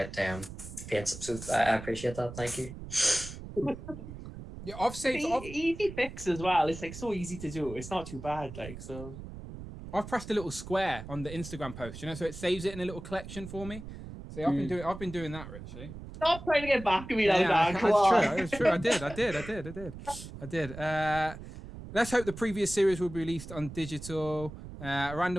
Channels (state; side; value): noise; right; rumble, 12 dB below the sound